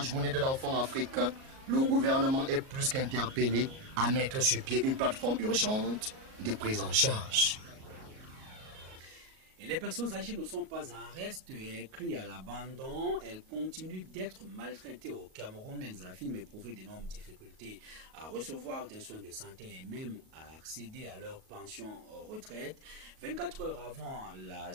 journée de l'enfant africain, le gouvernement est plus qu'interpellé à mettre sur pied une plateforme urgente de prise en charge. Et les personnes âgées ne sont pas en reste et écrites à l'abandon. Elles continuent d'être maltraitées au Cameroun. Elles affirment éprouver d'énormes difficultés à recevoir des soins de santé et même à accéder à leur pension retraite. 24 heures avant la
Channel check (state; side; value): late; left; 38 ms